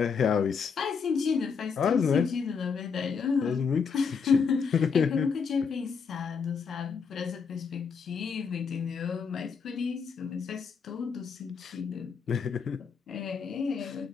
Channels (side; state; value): right; quieter; 5.9 dB